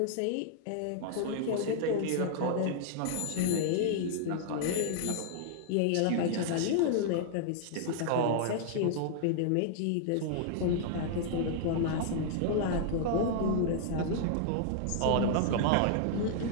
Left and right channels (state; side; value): different; both; correlation -0.01